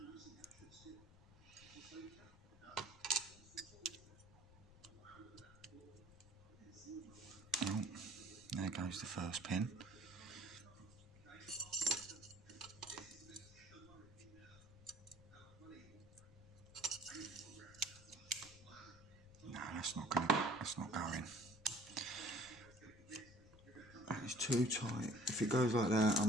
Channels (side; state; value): left; noise; rumble, 21 dB below the sound